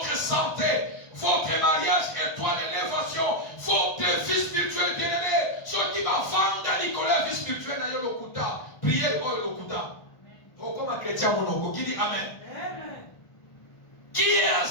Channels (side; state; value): right; late; 1.4 ms